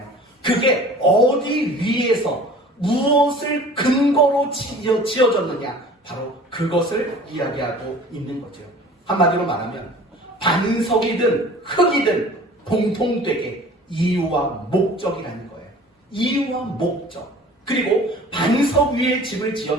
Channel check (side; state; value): both; normal; correlation 0.45